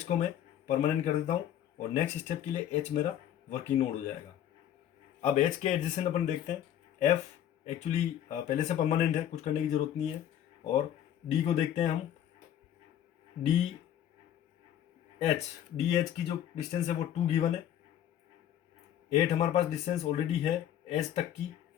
को मैं परमानेंट कर देता हूँ और नेक्स्ट स्टेप के लिए एच मेरा वर्किंग नोड हो जाएगा। अब एच के एडजेसेंट अपन देखते हैं। एफ एक्चुअली पहले से परमानेंट है, कुछ करने की जरूरत नहीं है। और डी को देखते हैं हम, डी एच की जो डिस्टेंस है वो 2 गिवन है। 8 हमारे पास डिस्टेंस ऑलरेडी है एच तक की,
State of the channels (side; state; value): right; quieter; 10.8 dB